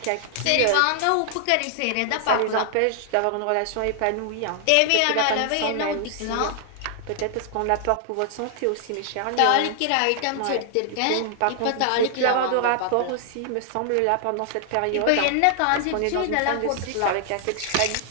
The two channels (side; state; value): both; different; correlation 0.00